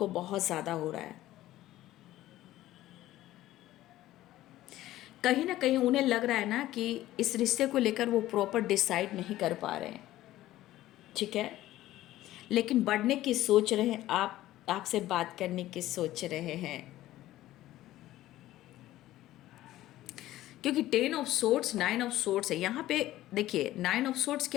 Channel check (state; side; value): quieter; right; 15.0 dB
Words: बहुत ज़्यादा हो रहा है। कहीं ना कहीं उन्हें लग रहा है ना कि इस रिश्ते को लेकर वो प्रॉपर डिसाइड नहीं कर पा रहे हैं, ठीक है। लेकिन बढ़ने की सोच रहे हैं, आपसे बात करने की सोच रहे हैं, क्योंकि 10 ऑफ सोर्ड्स 9 ऑफ सोर्ड्स है यहाँ पे। देखिए 9 ऑफ सोर्ड्स